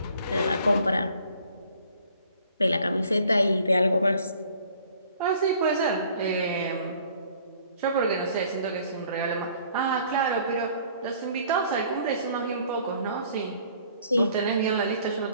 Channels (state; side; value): inverted; both; correlation -0.56